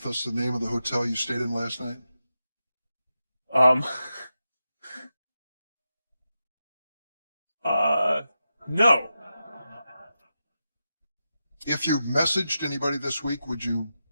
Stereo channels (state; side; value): inverted; both; correlation -0.89